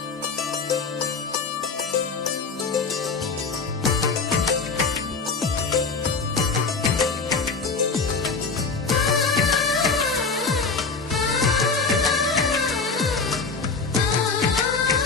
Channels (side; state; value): right; quieter; 4.6 dB